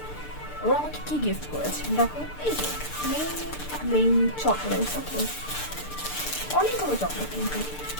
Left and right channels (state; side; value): late; right; 6.7 ms